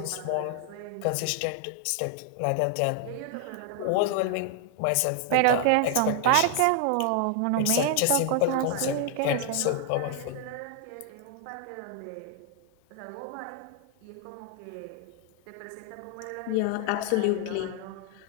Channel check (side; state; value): both; different; correlation 0.00